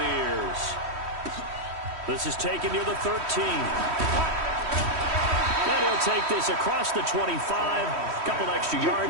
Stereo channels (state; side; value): late; left; 3.1 ms